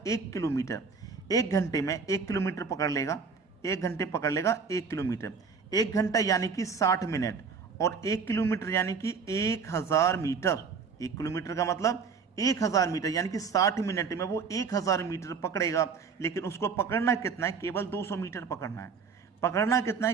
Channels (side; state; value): left; quieter; 5.5 dB